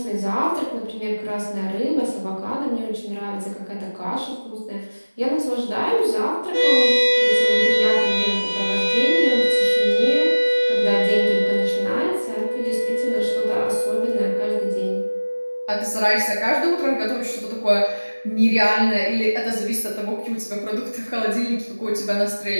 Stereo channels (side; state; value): both; inverted; correlation -1.00